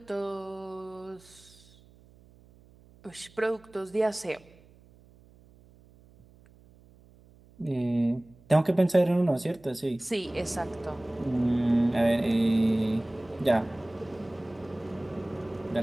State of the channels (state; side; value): noise; right; hum, 27 dB below the sound